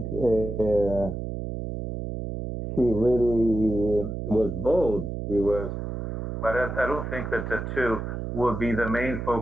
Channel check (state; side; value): noise; right; hum, 5 dB below the sound